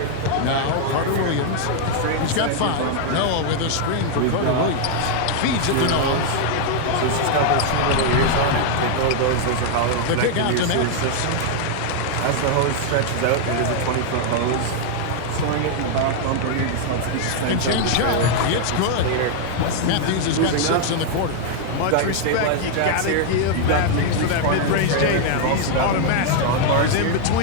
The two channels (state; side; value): different; both; correlation 0.00